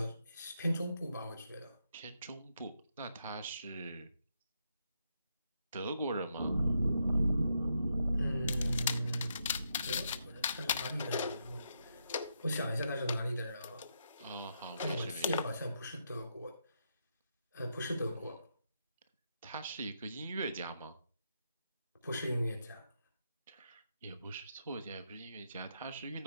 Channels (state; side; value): inverted; both; correlation -0.80